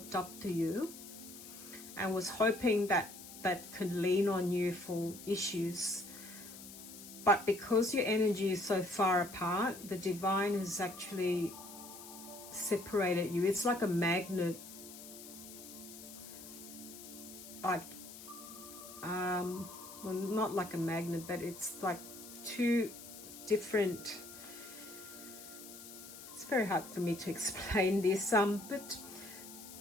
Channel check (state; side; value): noise; left; hiss, 14 dB below the sound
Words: up to you and was hoping that that can lean on you for issues. But because your energy is so far apart, the divine has actually separated you. It's like a magnet. Like, well, not like a magnet, but it's like two different... It's very hard for me to explain this, but